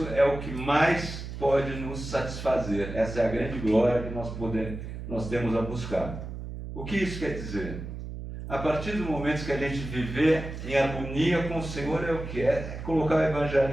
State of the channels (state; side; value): noise; right; hum, 8 dB below the sound